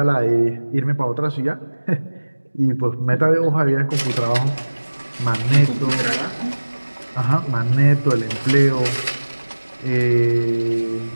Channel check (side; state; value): both; inverted; correlation -1.00